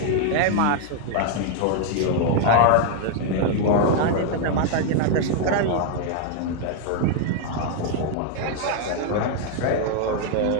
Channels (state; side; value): different; both; correlation 0.00